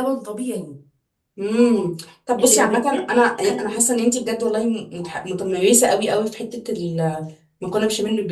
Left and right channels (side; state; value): both; identical; correlation 1.00